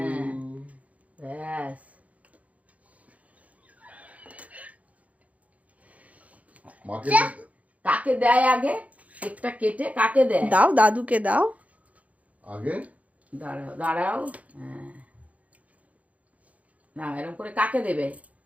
ইউ। ব্যাস। মাকে কাকে দেয় আগে? কেকটা কেটে কাকে দেয়? দাও, দাদুকে দাও। আগে দাঁড়াও দাঁড়াও। হ্যাঁ, না এরকম করে কাকে দেবে?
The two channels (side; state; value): left; late; 0.069 ms